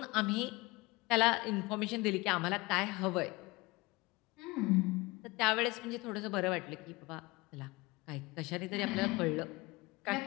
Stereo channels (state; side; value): quieter; right; 22.9 dB